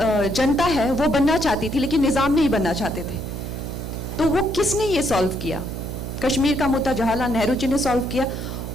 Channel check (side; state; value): right; noise; hum, 6 dB below the sound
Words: है वो बनना चाहती थी, लेकिन निज़ाम नहीं बनना चाहते थे। तो वो किसने ये सॉल्व किया? कश्मीर का मुद्दा जवाहरलाल नेहरू जी ने सॉल्व किया